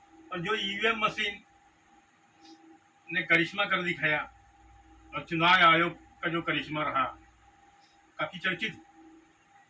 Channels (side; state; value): both; identical; correlation 1.00